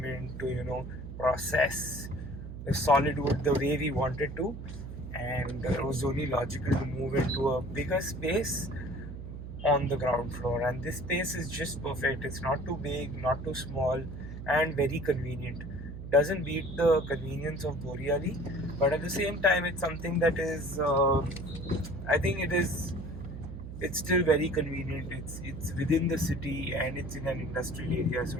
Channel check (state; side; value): noise; right; hum, 10 dB below the sound